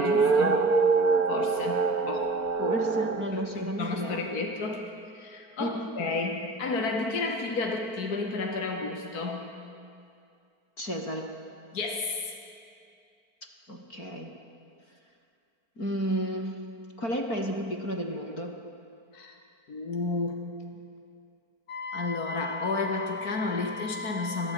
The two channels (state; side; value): late; right; 4.5 ms